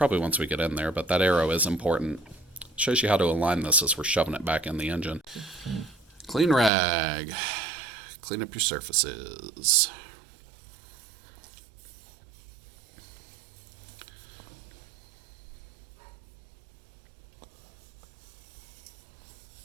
once we get in there, but that Aero is important. Shows you how to align this as we're shoving it back in the engine. Clean rag. Clean up your surfaces.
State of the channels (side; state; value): left; drops out; at 6.7 s